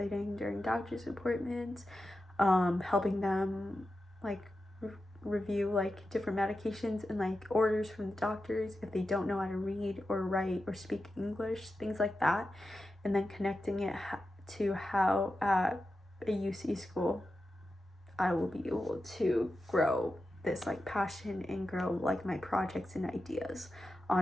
during doctor's appointments, helping them like review like different medications and like orders from the doctors if they don't know how to read or write or speak English, things like that, and then connecting it to how at a UC school I will be able to grow this like passion and grow like my projects and ideas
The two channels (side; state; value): both; normal; correlation 0.91